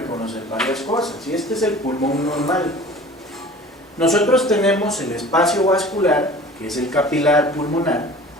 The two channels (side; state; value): both; normal; correlation 0.43